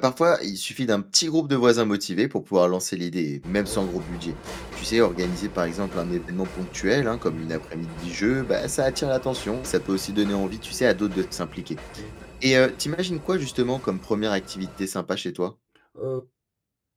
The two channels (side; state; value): both; identical; correlation 1.00